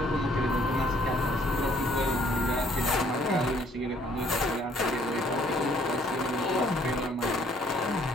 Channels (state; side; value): normal; both; correlation 0.63